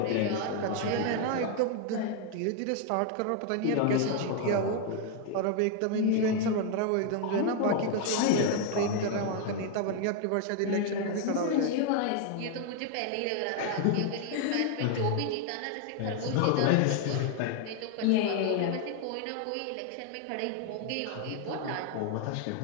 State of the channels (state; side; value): different; both; correlation 0.00